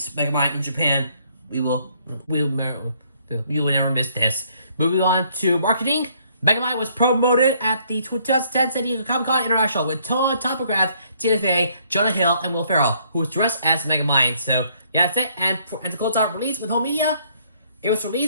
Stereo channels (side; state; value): both; inverted; correlation -0.66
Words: Megamind in Japan. We will never miss this. Moving on to marketing. Megamind was promoted at the 2010 San Diego Comic-Con International with Tom McGrath, Tina Fey, Jonah Hill, and Will Ferrell, who was dressed as Megamind. So, yeah, that's it. And to close out release with home media, it was